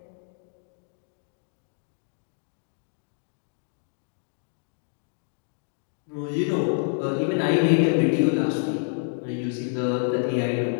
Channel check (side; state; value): right; silent; digital silence